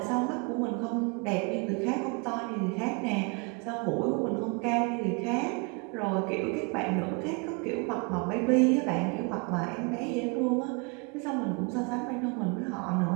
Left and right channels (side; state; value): left; quieter; 32.0 dB